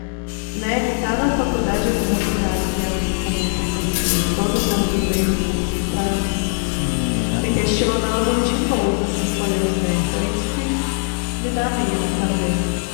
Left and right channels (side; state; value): right; silent; digital silence